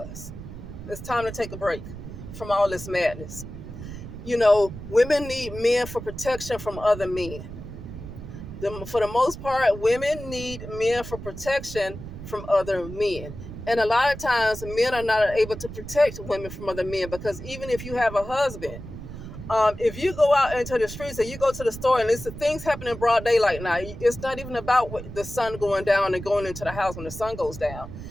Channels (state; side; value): noise; right; rumble, 11 dB below the sound